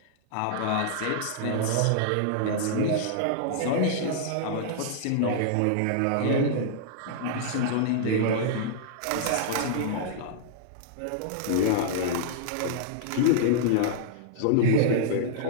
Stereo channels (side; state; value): both; different; correlation -0.01